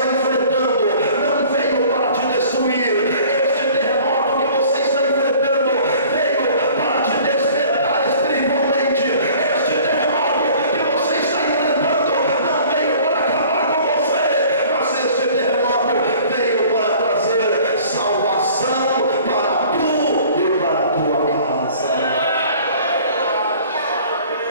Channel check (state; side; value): inverted; both; correlation -0.50